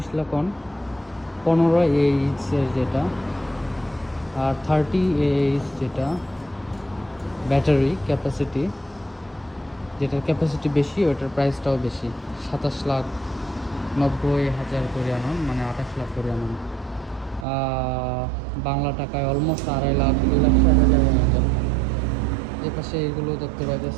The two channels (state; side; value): drops out; left; at 17.4 s